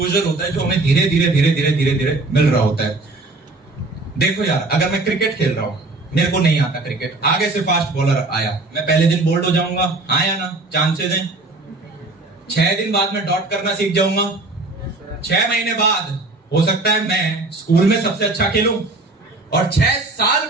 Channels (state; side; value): quieter; left; 3.1 dB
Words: होता है जो हमें धीरे धीरे मिल रहा होता है। देखो यार, अगर मैं क्रिकेट खेल रहा हूं, मेरे को नहीं आता क्रिकेट, आगे से फास्ट बॉलर आया, मैं पहले दिन बोल्ड हो जाऊंगा, हाँ या ना? चांसेस हैं। 6 दिन बाद में डॉट करना सीख जाऊंगा, 6 महीने बाद हो सकता है मैं स्कूल में सबसे अच्छा खेलूं, और 6 साल